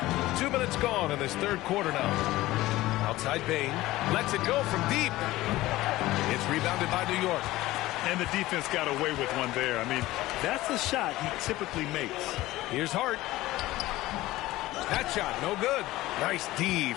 2 minutes gone in this third quarter now. Outside Bane. Lets it go from deep. It's rebounded by New York. And the defense got away with one there. I mean, that's the shot he typically makes. Here's Hart. That shot, no good. Nice D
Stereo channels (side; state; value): right; quieter; 17.3 dB